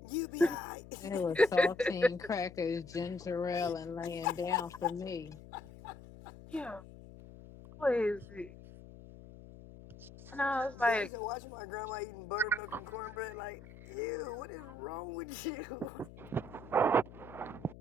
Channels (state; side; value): noise; left; hum, 17 dB below the sound